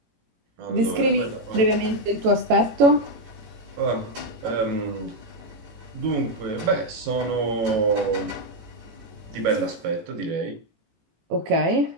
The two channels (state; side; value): late; left; 18 ms